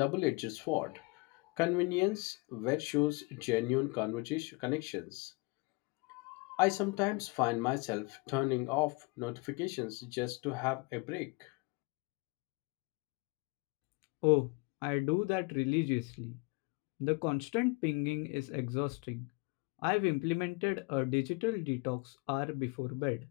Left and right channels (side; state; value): right; quieter; 27.5 dB